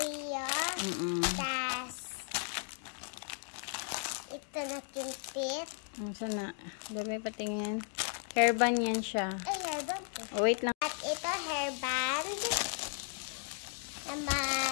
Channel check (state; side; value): silent; right; 54 dB below the other